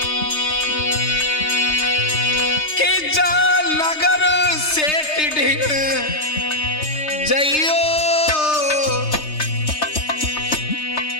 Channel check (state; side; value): late; right; 3.3 ms